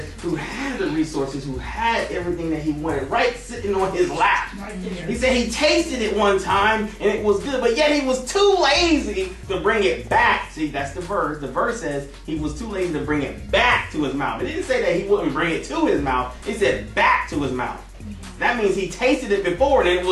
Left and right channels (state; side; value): identical; both; correlation 1.00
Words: who had the resources, who had everything that he wanted, right sitting on his lap. He said he tasted it one time and it was good, but yet he was too lazy to bring it back. See, that's the verse. The verse says he was too lazy to bring it back to his mouth. It didn't say that he wouldn't bring it to his mouth. It said back to his mouth. That means he tasted it before and it